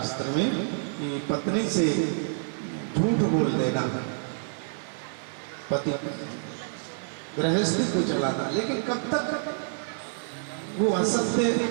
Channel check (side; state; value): left; silent; 56 dB below the other